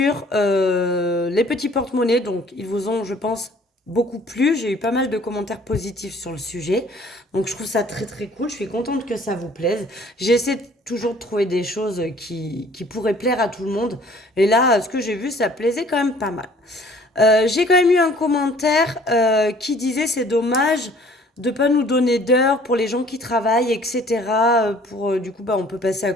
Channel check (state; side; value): normal; both; correlation 0.55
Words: les petits porte-monnaies. Donc, ils vous ont, je pense, beaucoup plu. J'ai eu pas mal de commentaires positifs sur le sujet. Donc, je trouve ça très très cool. Je suis contente que ça vous plaise. J'essaie toujours de trouver des choses qui pourraient plaire à tout le monde. Et là, ce que j'ai vu, ça plaisait quand même pas mal. J'ai quand même eu un commentaire qui disait c'est dommage de pas nous donner d'heures pour les gens qui travaillent, etc. Pour du coup, bah, on peut passer à